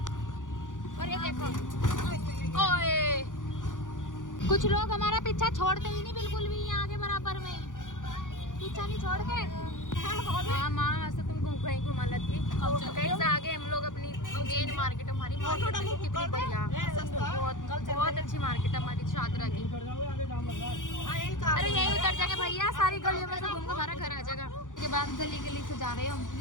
और ये देखो ओए, कुछ लोग हमारा पीछा छोड़ते ही नहीं बिल्कुल भी, यहाँ के बराबर में पीछा नहीं छोड़ के। हाँ माँ से तुम कहीं घुमा लेती। कहीं से आगे हम लोग अपनी मेन मार्केट, हमारी मार्केट कितनी बढ़िया, बहुत अच्छी मार्केट है हमारी शादरा की। अरे यही उतर जाएगा भैया, सारी गलियों में से घूम के हमारा घर आ जाएगा। उसके बाद गली गली से जा रहे हैं हम,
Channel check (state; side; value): late; right; 0.88 ms